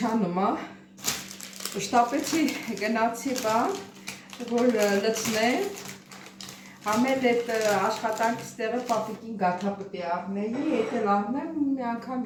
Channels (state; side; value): identical; both; correlation 1.00